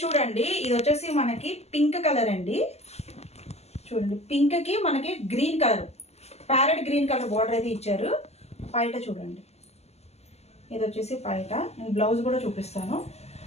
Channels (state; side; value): late; right; 0.31 ms